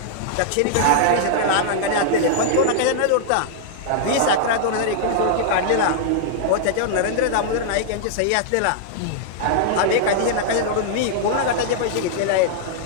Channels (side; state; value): both; different; correlation -0.01